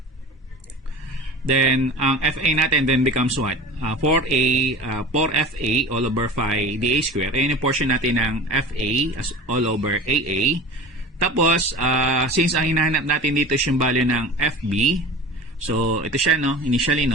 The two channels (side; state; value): both; normal; correlation 0.35